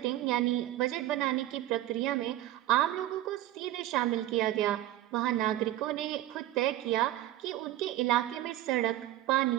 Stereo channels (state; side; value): quieter; left; 14.1 dB